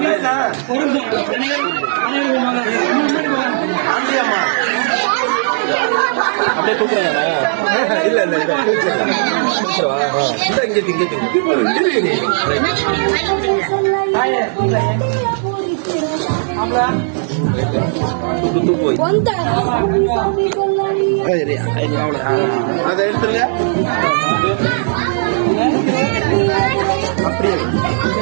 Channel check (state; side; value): silent; left; 67 dB below the other